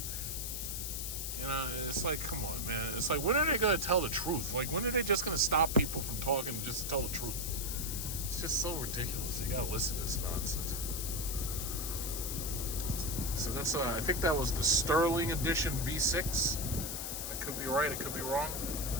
You know, it's like, come on, man. It's like, when are they going to tell the truth? Like, when are they just going to stop people from talking just to tell the truth? It's just so ridiculous. You got to listen to this nonsense. So that's, I think that was the Sterling Edition V6. I could be right, I could be wrong.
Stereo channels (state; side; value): noise; left; hiss, 4 dB below the sound